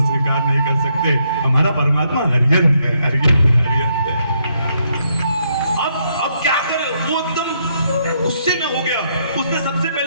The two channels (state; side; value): inverted; both; correlation -0.75